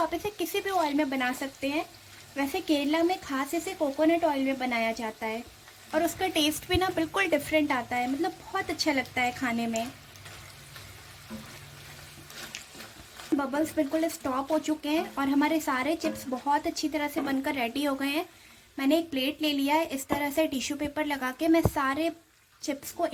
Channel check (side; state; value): both; identical; correlation 1.00